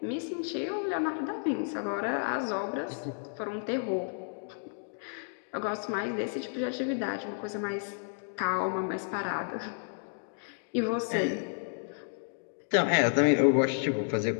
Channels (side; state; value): right; silent; digital silence